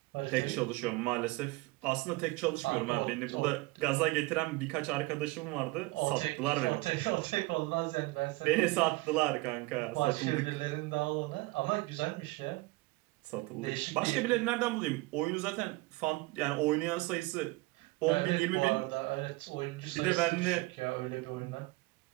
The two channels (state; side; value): quieter; left; 22.0 dB